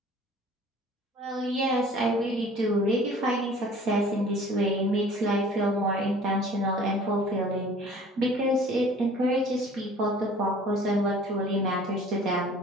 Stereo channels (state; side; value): normal; both; correlation 0.49